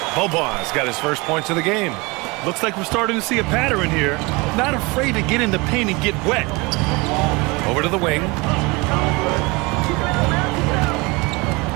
Bobois got his first points of the game. Looks like we're starting to see a pattern here. Not afraid to get in the paint and get wet. Over to the wing.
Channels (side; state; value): left; quieter; 25.7 dB